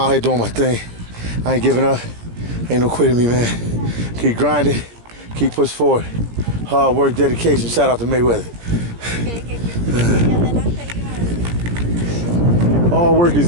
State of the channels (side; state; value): left; late; 17 ms